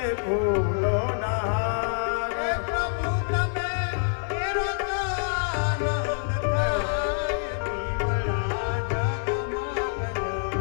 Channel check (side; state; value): right; silent; digital silence